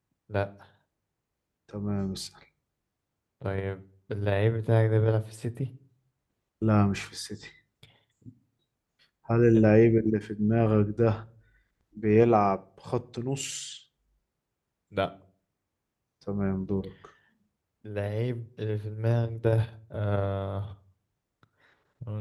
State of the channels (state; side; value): identical; both; correlation 1.00